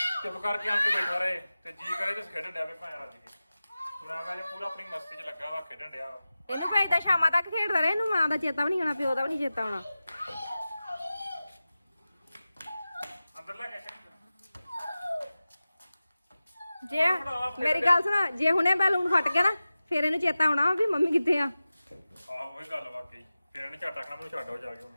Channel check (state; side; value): inverted; both; correlation -0.95